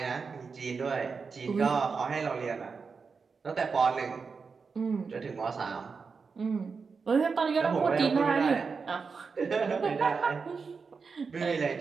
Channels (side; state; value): left; quieter; 5.1 dB